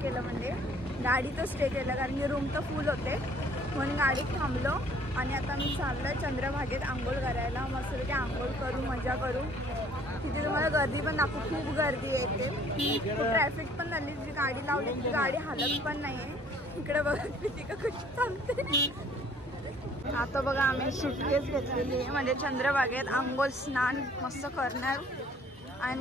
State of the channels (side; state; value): both; normal; correlation 0.57